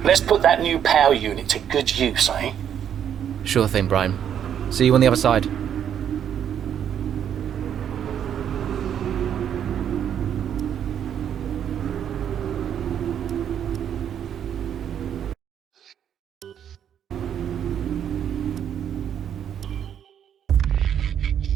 Let's put that new power unit to good use, eh? Sure thing, Brian. See you on the other side.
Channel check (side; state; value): left; quieter; 9.2 dB